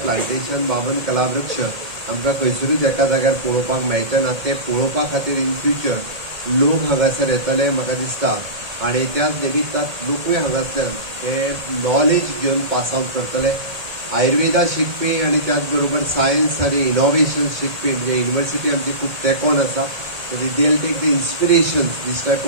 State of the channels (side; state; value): left; late; 1.8 ms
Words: प्लांटेशन वामन कलावृक्ष आमकां खंयसरूच एका जाग्यार पळोवपाक मेळटना. ते पळोवपा खातीर इन फ्युचर लोक हांगासर येतले म्हाका दिसता आणि त्याच निमित्तान लोकूय हांगासल्यान हे नॉलेज घेवन पास आउट करतले. आयुर्वेदा शिकपी आणि त्याच बरोबर सायन्स आणि इनोव्हेशन शिकपी म्हणजे युनिव्हर्सिटी आमची खूब तेंकोन आसा. they'll take the inspiration, this type